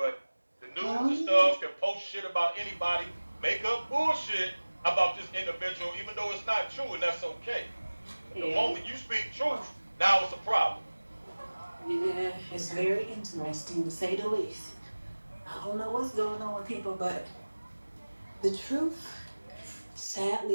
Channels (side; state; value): both; inverted; correlation -1.00